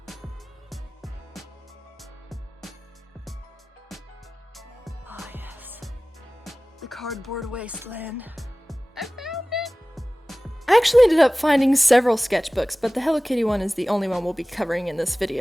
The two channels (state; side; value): normal; both; correlation 0.98